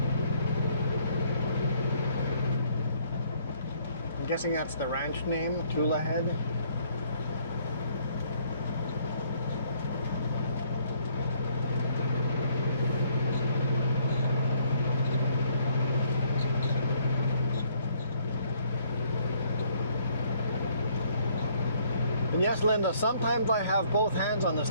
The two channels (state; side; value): inverted; both; correlation -0.65